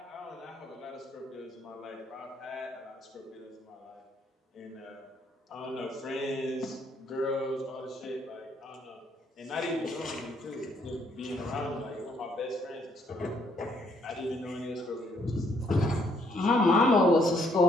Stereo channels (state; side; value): normal; both; correlation 0.69